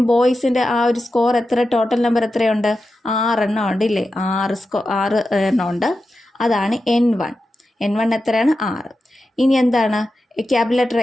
ബോയ്സിൻ്റെ ആ ഒരു സ്കോർ എത്ര, ടോട്ടൽ നമ്പർ എത്രയുണ്ട്? 6 എണ്ണം ഉണ്ട് ഇല്ലേ? 6 എണ്ണം ഉണ്ട്. അതാണ് n1 എത്രയാണ്? 6. ഇനി എന്താണ് ക്യാപിറ്റൽ ലെറ്റർ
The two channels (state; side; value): normal; both; correlation 0.91